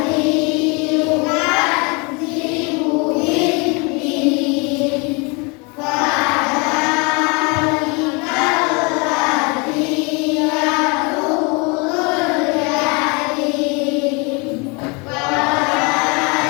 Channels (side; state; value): right; quieter; 30.1 dB